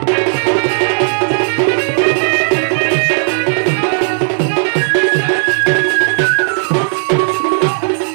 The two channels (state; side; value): silent; left; digital silence